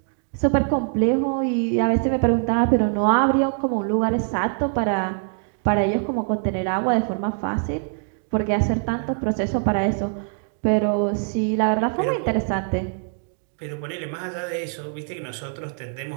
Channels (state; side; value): silent; left; 63 dB below the other